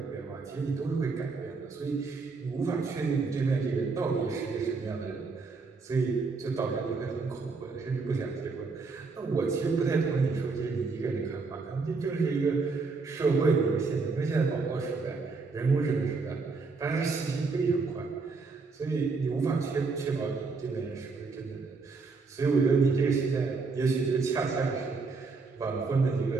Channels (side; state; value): left; quieter; 4.3 dB